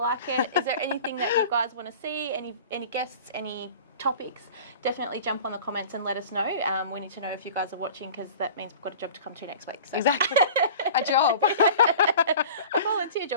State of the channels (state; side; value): inverted; both; correlation -0.41